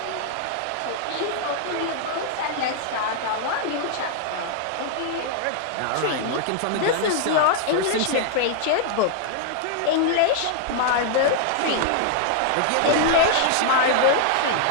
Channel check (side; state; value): both; different; correlation -0.01